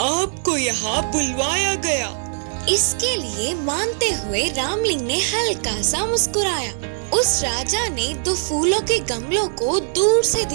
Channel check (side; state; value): left; silent; 59 dB below the other